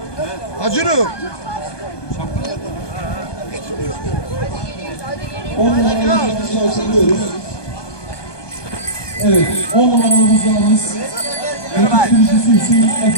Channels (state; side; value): late; right; 1.2 ms